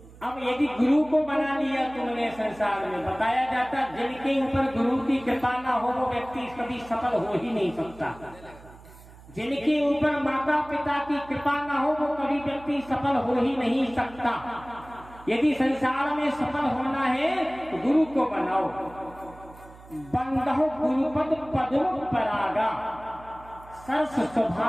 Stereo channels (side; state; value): right; noise; hum, 21 dB below the sound